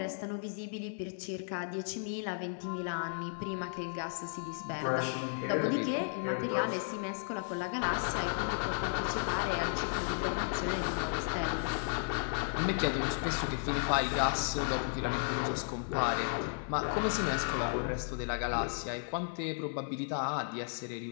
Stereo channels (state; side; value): silent; right; 55 dB below the other